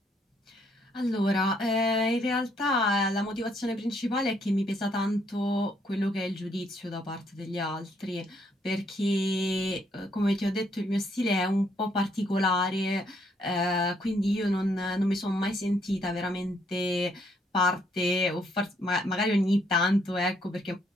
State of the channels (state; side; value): normal; both; correlation 0.71